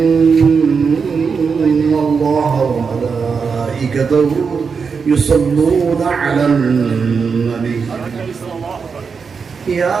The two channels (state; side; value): quieter; left; 5.5 dB